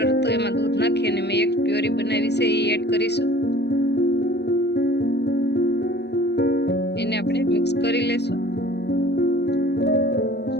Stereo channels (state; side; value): late; right; 0.49 ms